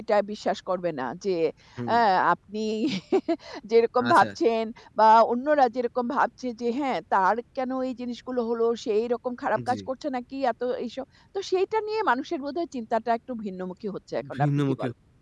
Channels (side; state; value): both; identical; correlation 1.00